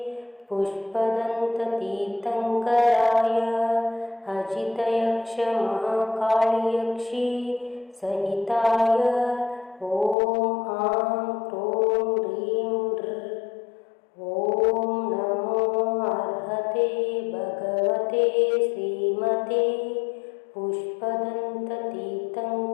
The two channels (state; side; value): drops out; right; at 10.2 s